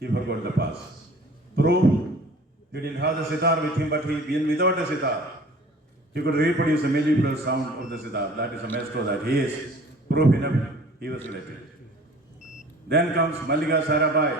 forgot the pass. Proof, he didn't have the sitar with him, but even without the sitar, he could reproduce the mellifluous sound of the sitar. That is a maestro that he is. Proof enough, he was elected. Then comes Mallika Sarabai.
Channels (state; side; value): normal; both; correlation 0.48